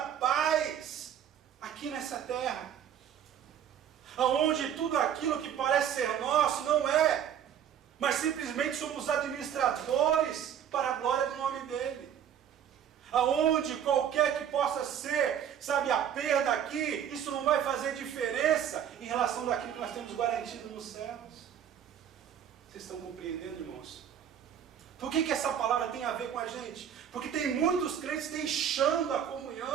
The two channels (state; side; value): quieter; left; 9.2 dB